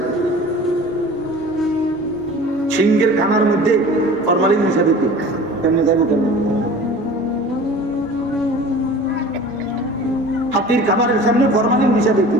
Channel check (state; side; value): normal; both; correlation 0.41